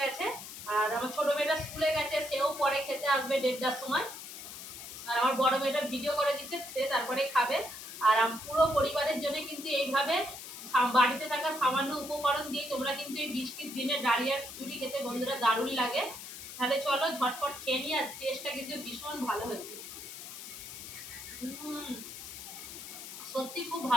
আর আমার ছোট মেয়েটা স্কুলে গেছে, সেও পরে খেতে আসবে 1:30টার সময়। আর আমার বড় মেয়েটা ভিডিও করে দিচ্ছে, সে তারপরে খাবে। আর পুরো পরিবারের জন্য কিন্তু এইভাবে বাড়িতে থাকা সামান্য উপকরণ দিয়ে তোমরা কিন্তু এই বৃষ্টির দিনে ডালিয়ার খিচুড়ি খেতে বন্ধুরা দারুণ লাগে। তাহলে চলো ঝটপট খেয়ে নিই। আর টেস্টটা কিন্তু ভীষণ ভালো হয়েছে, সত্যি খুব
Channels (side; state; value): left; noise; hiss, 11 dB below the sound